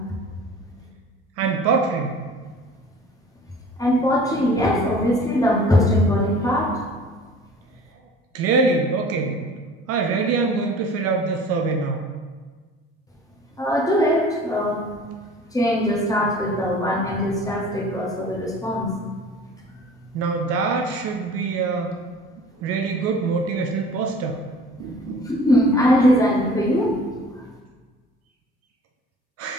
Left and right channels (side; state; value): both; normal; correlation 0.45